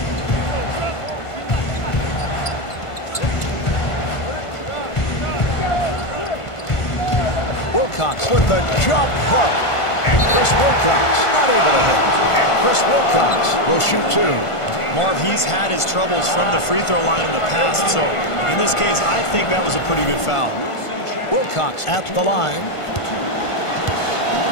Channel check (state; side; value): late; right; 1.5 ms